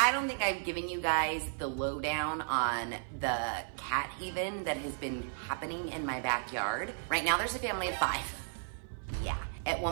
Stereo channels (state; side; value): silent; left; 55 dB below the other